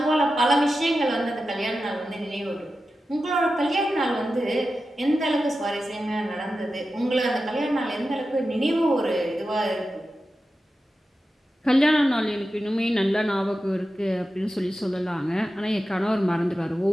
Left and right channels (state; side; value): normal; both; correlation 0.92